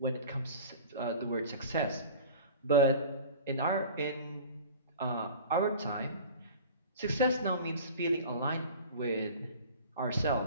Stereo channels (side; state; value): both; inverted; correlation -0.39